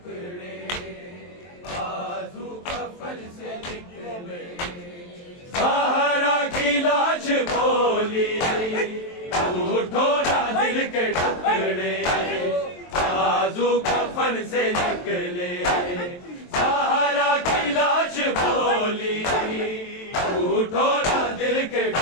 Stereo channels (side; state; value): right; late; 23 ms